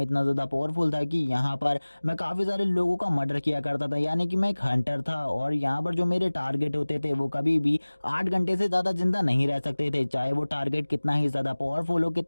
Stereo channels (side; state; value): both; inverted; correlation -1.00